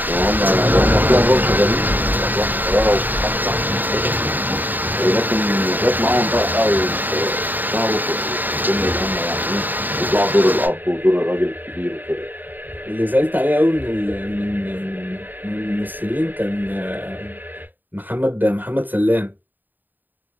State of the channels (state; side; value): late; left; 0.089 ms